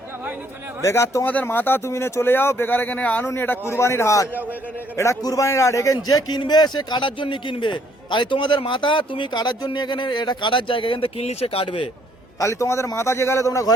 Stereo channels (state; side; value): normal; both; correlation 0.66